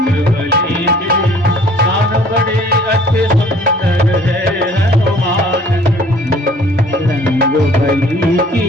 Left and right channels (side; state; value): both; normal; correlation 0.54